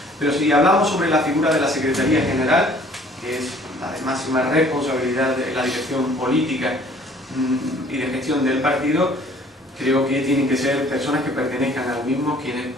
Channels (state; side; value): normal; both; correlation 0.55